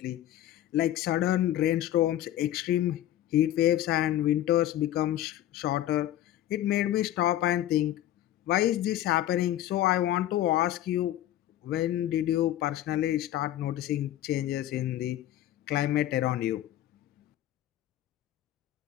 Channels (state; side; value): quieter; right; 13.1 dB